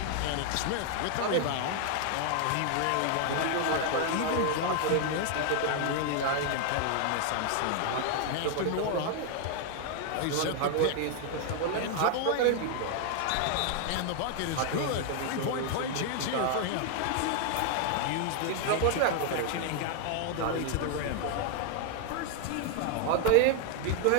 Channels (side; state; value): both; different; correlation 0.00